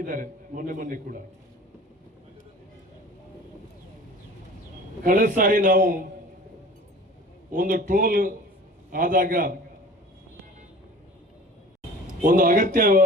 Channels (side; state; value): both; normal; correlation 0.42